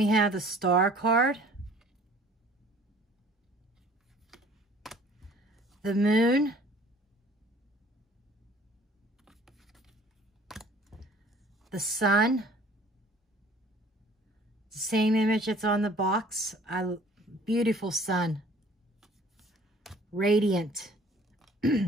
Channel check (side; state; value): both; normal; correlation 0.52